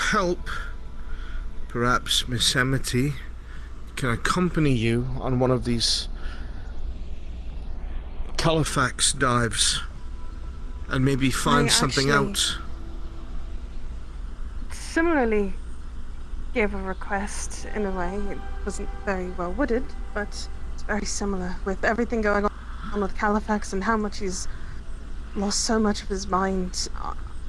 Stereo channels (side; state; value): both; identical; correlation 1.00